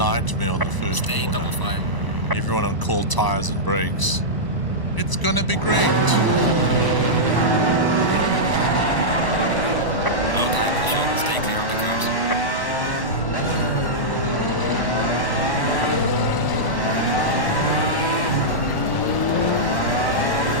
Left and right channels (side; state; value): right; late; 1.0 ms